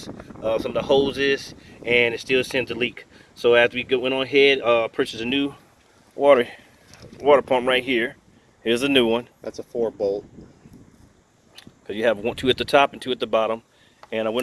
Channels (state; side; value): identical; both; correlation 1.00